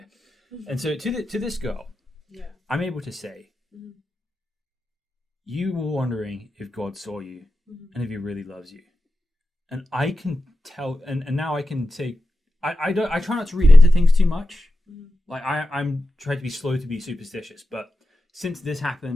And so to this girl, I'm able to say, you were wondering if God saw you and if he really loves you. And I can tell, and now I can say, I try not to read into things too much. Like I'm trying to be slow to be superstitious, but since this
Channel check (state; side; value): normal; both; correlation 0.91